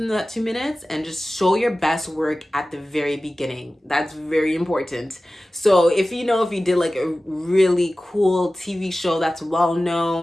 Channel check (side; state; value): both; normal; correlation 0.96